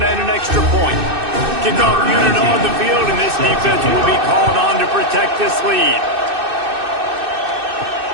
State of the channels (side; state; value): left; late; 2.6 ms